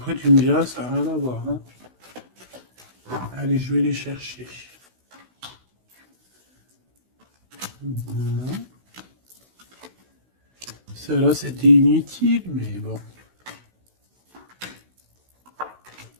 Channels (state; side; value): late; left; 16 ms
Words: tu me diras, ça n'a rien à voir. Hein. Allez, je vais les chercher. Bon. Celle-là, c'était inutile, mais bon.